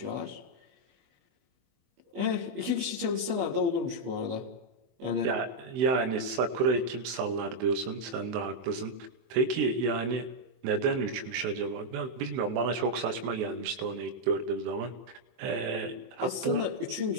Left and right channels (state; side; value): late; left; 23 ms